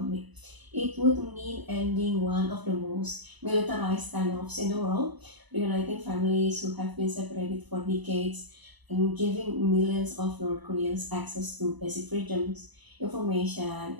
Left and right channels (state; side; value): late; left; 1.0 ms